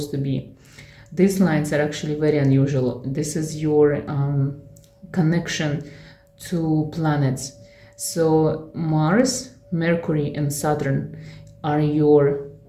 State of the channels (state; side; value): identical; both; correlation 1.00